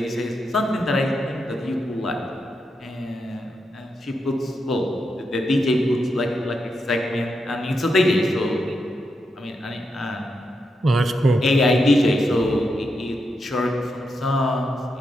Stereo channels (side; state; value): both; normal; correlation 0.84